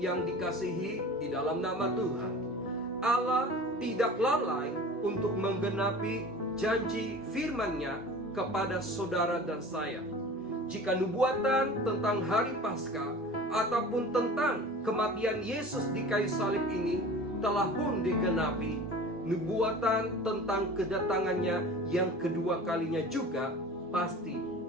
dikasihi di dalam nama Tuhan, Allah tidak lalai untuk menggenapi janji firman-Nya kepada saudara dan saya. Jika nubuatan tentang hari Paskah ataupun tentang kematian Yesus di kayu salib ini telah pun digenapi, nubuatan tentang kedatangannya yang kedua kalinya juga pasti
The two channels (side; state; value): both; normal; correlation 0.39